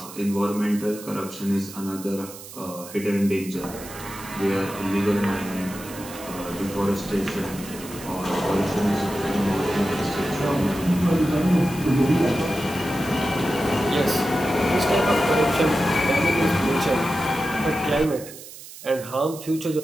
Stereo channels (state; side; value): noise; right; hiss, 15 dB below the sound